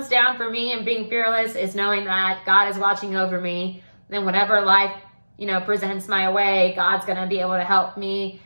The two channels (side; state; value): both; inverted; correlation -1.00